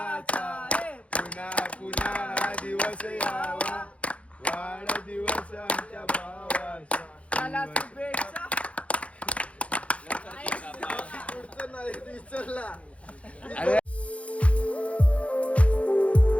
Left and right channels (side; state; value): right; late; 0.063 ms